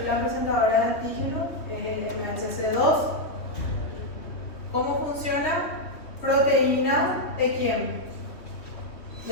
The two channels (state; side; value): late; right; 3.1 ms